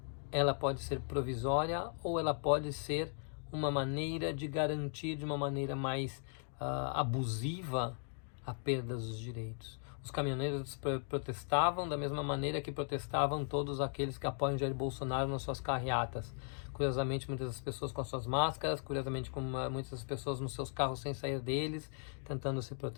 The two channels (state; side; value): silent; right; 53 dB below the other